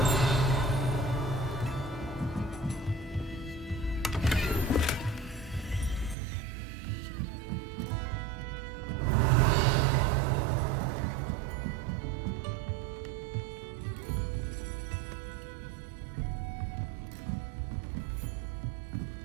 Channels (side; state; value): left; drops out; at 6.2 s